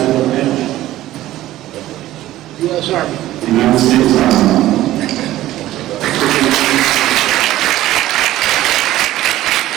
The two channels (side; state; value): left; quieter; 14.9 dB